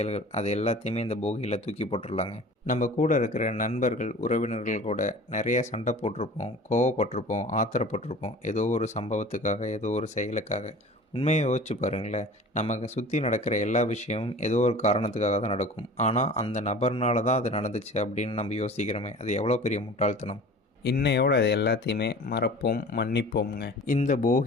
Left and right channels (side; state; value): both; normal; correlation 0.41